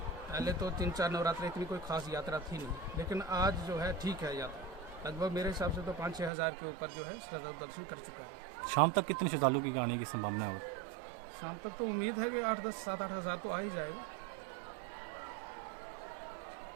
पहले तो 3-4 नवरात्र इतनी कोई खास यात्रा थी नहीं, लेकिन आज जो है ठीक है यात्रा, लगभग मेरे हिसाब से तो 5-6 हज़ार के ऊपर जो है श्रद्धालु दर्शन कर चुका है। शाम तक कितने श्रद्धालु की आने की संभावना है? शाम तक तो उम्मीद है कि 8-10-7-8 हज़ार तो आ ही जाएगा।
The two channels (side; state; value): left; drops out; at 6.3 s